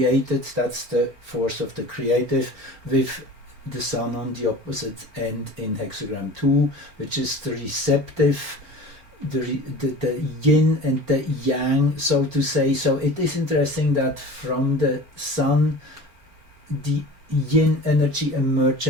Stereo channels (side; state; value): left; late; 4.3 ms